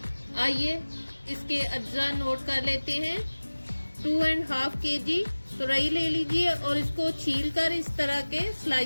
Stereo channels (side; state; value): both; inverted; correlation -1.00